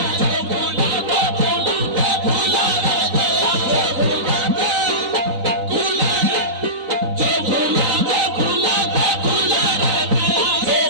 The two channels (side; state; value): left; late; 4.0 ms